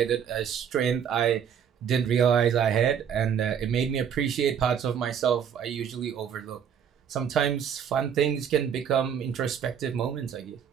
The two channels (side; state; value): left; quieter; 8.2 dB